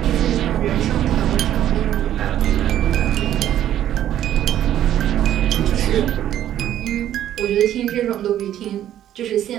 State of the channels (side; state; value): left; quieter; 11.6 dB